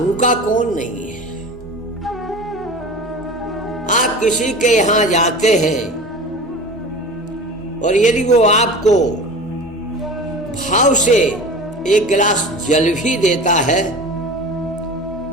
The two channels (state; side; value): normal; both; correlation 0.35